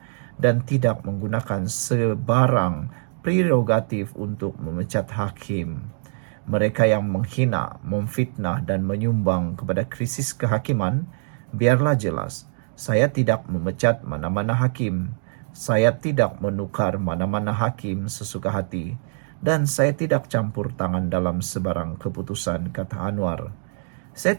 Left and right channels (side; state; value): left; silent; digital silence